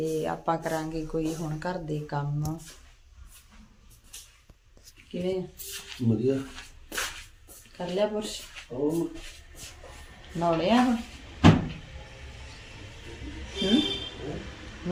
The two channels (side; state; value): both; identical; correlation 1.00